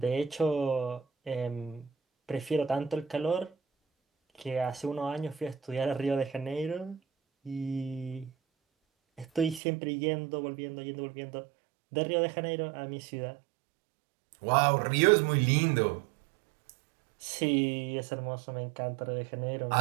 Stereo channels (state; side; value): drops out; left; at 9.6 s